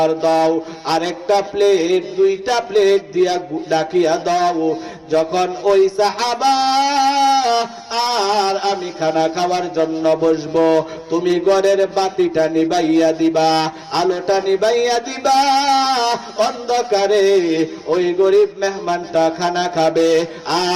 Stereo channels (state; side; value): identical; both; correlation 1.00